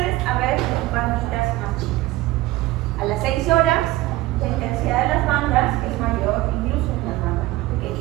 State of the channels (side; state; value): left; quieter; 17.6 dB